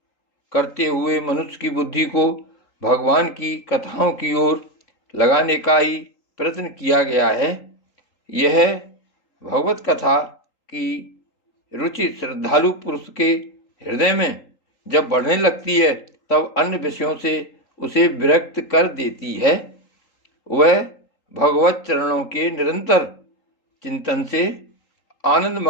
करते हुए मनुष्य की बुद्धि को भगवान की कथाओं की ओर लगाने का ही प्रयत्न किया गया है। यह भगवत कथा की रुचि श्रद्धालु पुरुष के हृदय में जब बढ़ने लगती है तब अन्य विषयों से उसे विरक्त कर देती है। वह भगवत चरणों के निरंतर चिंतन से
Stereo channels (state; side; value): late; right; 3.8 ms